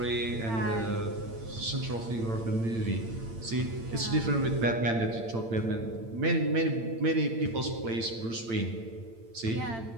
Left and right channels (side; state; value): left; late; 8.8 ms